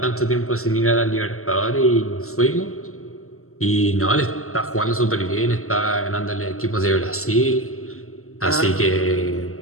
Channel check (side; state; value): right; late; 0.63 ms